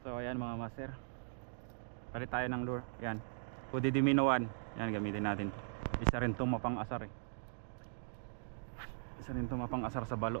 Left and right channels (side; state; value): left; silent; digital silence